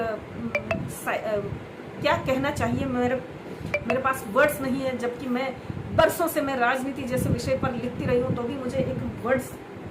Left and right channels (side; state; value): both; identical; correlation 1.00